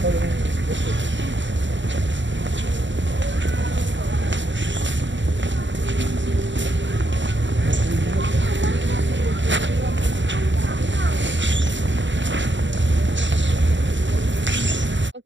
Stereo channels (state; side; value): late; left; 0.54 ms